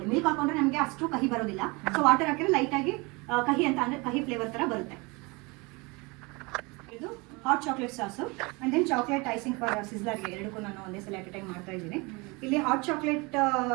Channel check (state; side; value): quieter; left; 26.8 dB